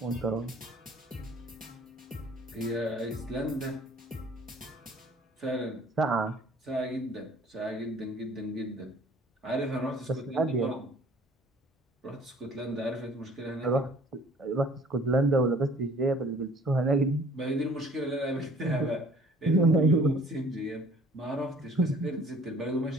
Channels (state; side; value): normal; both; correlation 0.53